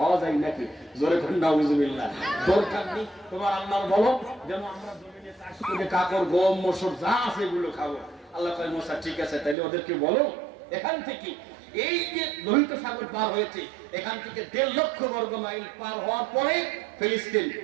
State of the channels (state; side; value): drops out; left; at 9.6 s